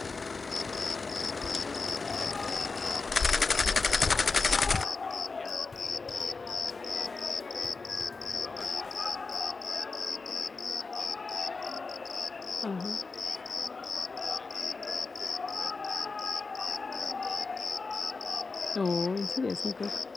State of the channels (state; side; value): quieter; right; 4.1 dB